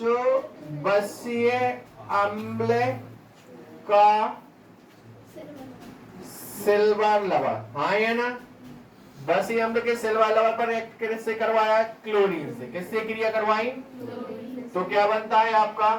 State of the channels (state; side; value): identical; both; correlation 1.00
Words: बसीय अम्ल का सिल्वर लवण। हाँ है ना? बसीय अम्ल के सिल्वर लवण पर एक किससे करवाया? क्लोरीन से। किससे क्रिया करवाई? तो क्या बनता है आपका?